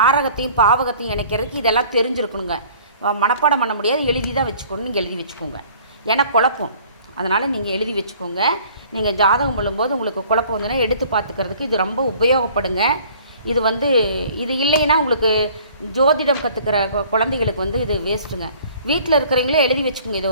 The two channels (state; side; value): inverted; both; correlation -0.53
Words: பாவகத்தையும் இணைக்கிறதுக்கு இதெல்லாம் தெரிஞ்சிருக்கணுங்க. மனப்பாடம் பண்ண முடியாது, எழுதி தான் வச்சுக்கணும். எழுதி வச்சுக்கோங்க, ஏன்னா குழப்பம். அதனால் நீங்கள் எழுதி வச்சுக்கோங்க. நீங்கள் ஜாதகம் பண்ணும்போது உங்களுக்கு குழப்பம் வந்துன்னா எடுத்து பார்த்துக்கிறதுக்கு இது ரொம்ப உபயோகப்படுங்க. இது இல்லைன்னா உங்களுக்கு ஜோதிடம் கற்றுக்கிற குழந்தைகளுக்கு இது வேஸ்ட்டுங்க. வீட்டில் இருக்கிறவங்களே எழுதி வச்சுக்கோங்க. இதை